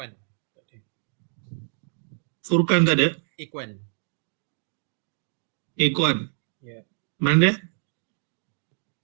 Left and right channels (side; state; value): left; silent; digital silence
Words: Furqan tak ada? Iqwan. Iqwan. Yeah. Mana dia?